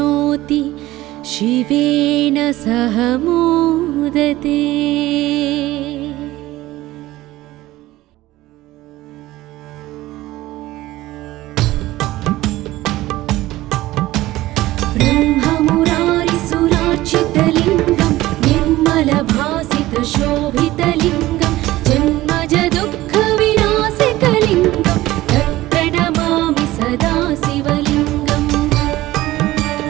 शिवेन सह मोदते। ब्रह्ममुरारिसुरार्चितलिङ्गं निर्मलभासितशोभितलिङ्गं जन्मज दुःखविनाशकलिङ्गं तत्प्रणमामि सदा शिवलिङ्गम्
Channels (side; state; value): left; quieter; 16.9 dB